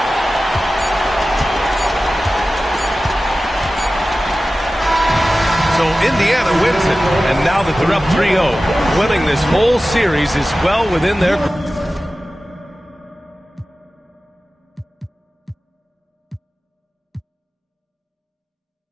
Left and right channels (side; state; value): both; normal; correlation 0.95